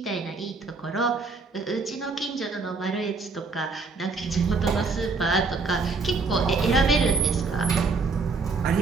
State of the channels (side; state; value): left; quieter; 4.2 dB